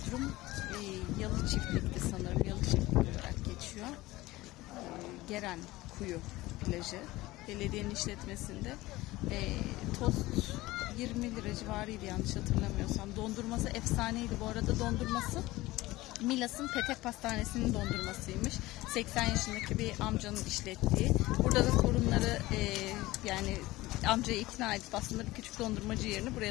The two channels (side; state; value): right; quieter; 18.7 dB